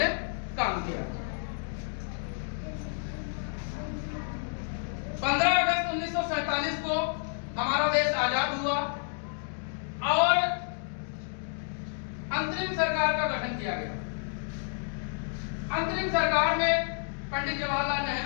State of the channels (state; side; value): silent; right; digital silence